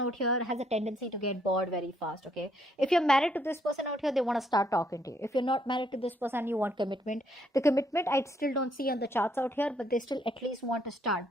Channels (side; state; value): both; normal; correlation 0.70